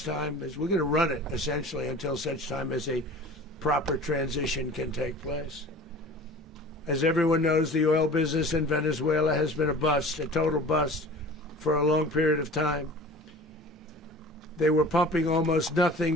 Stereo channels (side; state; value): both; normal; correlation 0.41